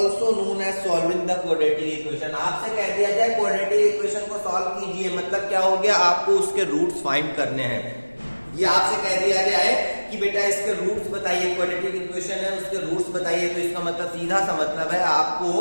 known as solving the quadratic equation। आपसे कह दिया जाए quadratic equation को सॉल्व कीजिए, मतलब क्या हो गया, आपको उसके रूट्स फाइंड करने हैं। ये आपसे कह दिया गया है कि बेटा इसके रूट्स बताइए, क्वाड्रेटिक इक्वेशन है उसके रूट्स बताइए, तो इसका मतलब सीधा सा मतलब है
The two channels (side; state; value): both; inverted; correlation -1.00